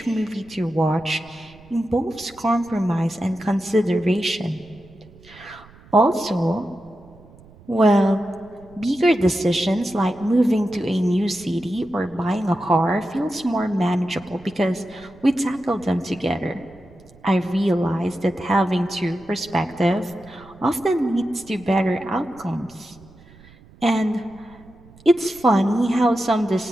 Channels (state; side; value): noise; right; rumble, 24 dB below the sound